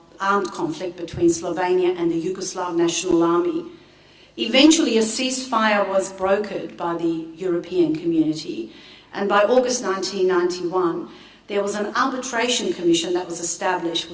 armed conflict between Slovenia and the Yugoslav National Army. Eventually a ceasefire was brokered by the European community, and by August 1991 there was an arbitration commission that was established,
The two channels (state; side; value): identical; both; correlation 1.00